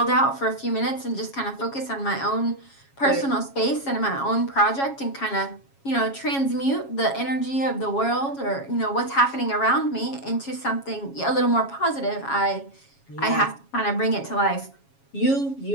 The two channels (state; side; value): late; right; 7.3 ms